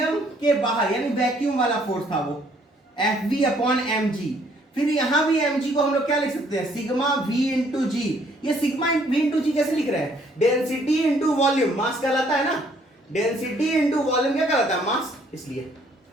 के बाहर यानी वैक्यूम वाला फोर्स था वो, Fv अपॉन mg। फिर यहां भी mg को हम लोग क्या लिख सकते हैं, सिग्मा v इंटू जी। ये सिग्मा v इंटू जी कैसे लिख रहे हैं, डेंसिटी इंटू वॉल्यूम, मास कहलाता है ना, डेंसिटी इंटू वॉल्यूम क्या कहलाता है, मास, इसलिए।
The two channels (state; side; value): normal; both; correlation 0.64